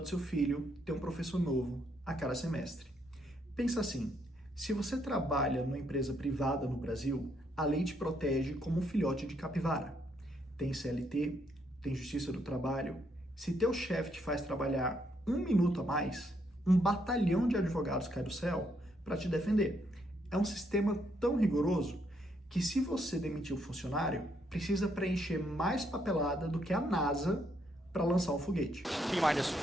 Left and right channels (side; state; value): both; normal; correlation 0.74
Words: do seu filho tem um professor novo a cada semestre. Pensa assim, se você trabalha numa empresa privada no Brasil, a lei te protege como um filhote de capivara. Tem CLT, tem Justiça do Trabalho. Se teu chefe te faz trabalhar um minuto a mais, um batalhão de advogados cai do céu para te defender. É um sistema tão rigoroso que se você demitir um funcionário, precisa preencher mais papelada do que a NASA para lançar um foguete.